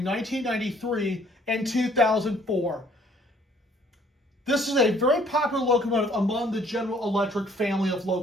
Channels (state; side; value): normal; both; correlation 0.60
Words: 1993 and 2004. This is a very popular locomotive among the General Electric family of